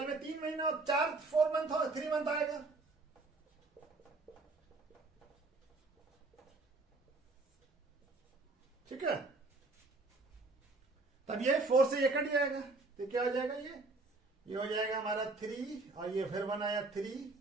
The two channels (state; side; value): quieter; left; 3.4 dB